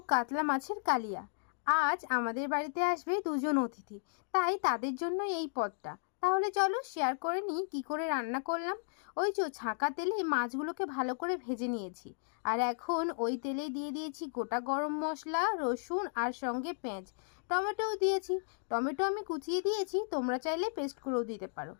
কাতলা মাছের কালিয়া। আজ আমাদের বাড়িতে আসবে দুজন অতিথি, তাই তাদের জন্য এই পদটা। তাহলে চলো শেয়ার করে নিই কী করে রান্না করলাম। ওই যে ছাঁকা তেলে মাছগুলোকে ভালো করে ভেজে নিয়েছি, আর এখন ওই তেলেই দিয়ে দিয়েছি গোটা গরম মশলা, রসুন আর সঙ্গে পেঁয়াজ, টমেটোও দিয়েছি। টমেটো আমি কুচিয়ে দিয়েছি, তোমরা চাইলে পেস্ট করেও দিতে পারো।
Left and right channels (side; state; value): right; silent; digital silence